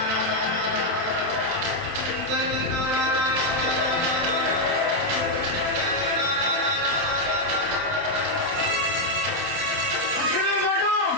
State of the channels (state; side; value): late; left; 27 ms